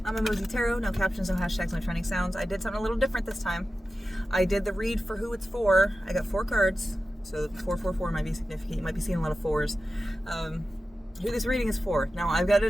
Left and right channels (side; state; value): both; normal; correlation 0.93